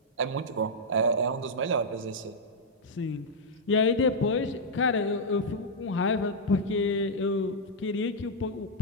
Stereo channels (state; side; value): normal; both; correlation -0.04